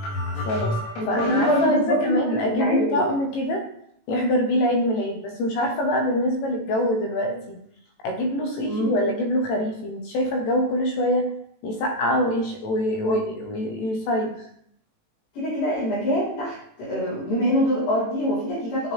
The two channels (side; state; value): right; late; 18 ms